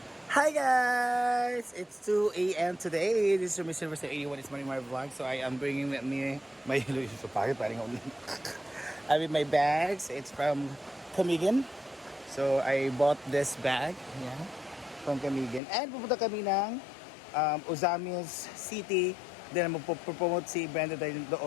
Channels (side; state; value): right; drops out; at 15.6 s